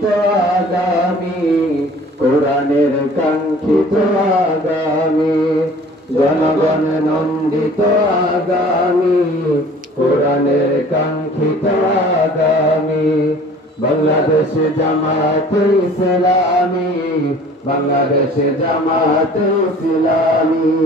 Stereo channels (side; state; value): both; normal; correlation 0.49